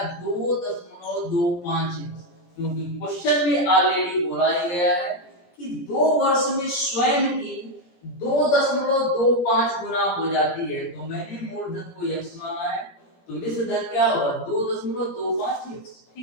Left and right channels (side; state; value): right; late; 17 ms